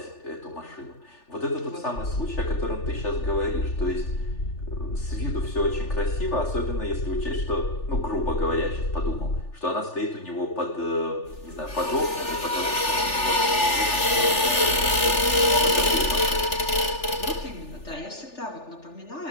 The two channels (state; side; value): late; right; 3.4 ms